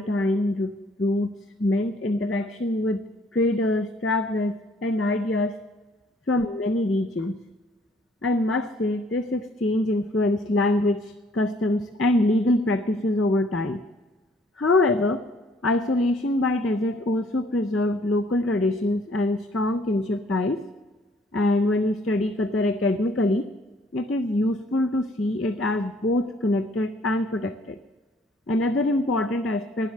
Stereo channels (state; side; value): normal; both; correlation 0.61